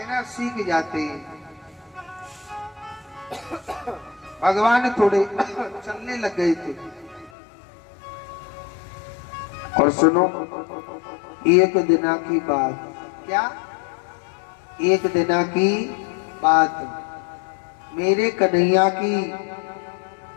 सीख जाते। भगवान थोड़े चलने लग गए थे। और सुनो एक दिना की बात, क्या? एक दिना की बात, मेरे कन्हैया की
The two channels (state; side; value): drops out; right; at 7.3 s